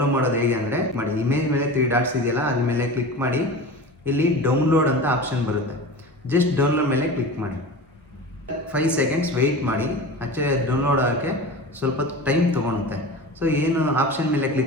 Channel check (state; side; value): normal; both; correlation 0.32